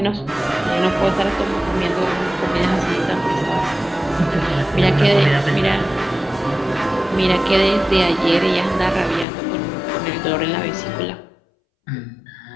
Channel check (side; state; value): right; drops out; at 9.2 s